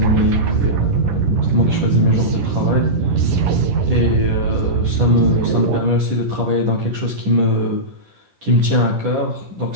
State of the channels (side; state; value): left; late; 10 ms